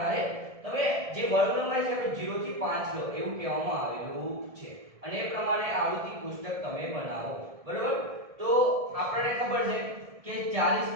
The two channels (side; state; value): left; late; 1.7 ms